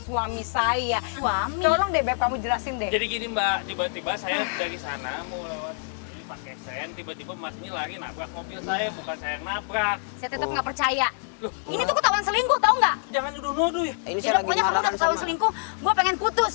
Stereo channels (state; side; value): silent; right; digital silence